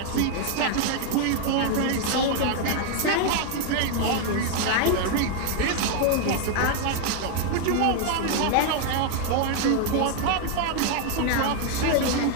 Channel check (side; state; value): both; different; correlation 0.00